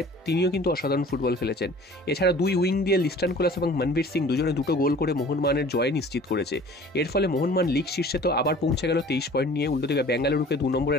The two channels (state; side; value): normal; both; correlation 0.47